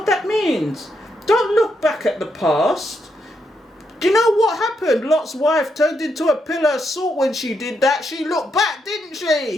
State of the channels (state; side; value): normal; both; correlation 0.80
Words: that means? Don't look back at the past. Do you know what happened? Lot's wife turned into a pillar of salt when she did that. She looked back, didn't